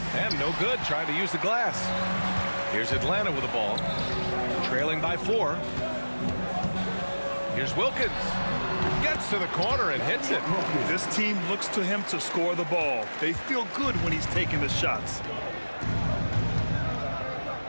And no good trying to use the glass. Here's Atlanta with the ball. Trailing by 4. Here's Wilkins. Gets to the corner and hits it. This team looks to him to score the ball. They feel good when he's taking the shots.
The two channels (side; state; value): both; inverted; correlation -1.00